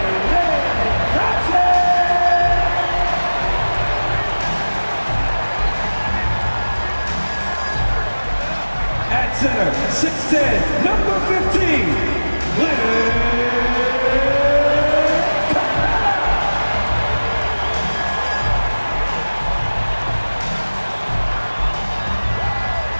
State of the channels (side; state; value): both; inverted; correlation -1.00